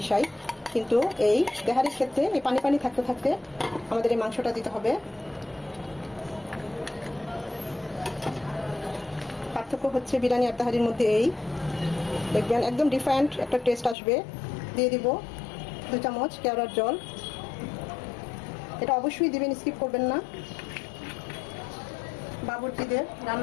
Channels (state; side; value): drops out; right; at 14.0 s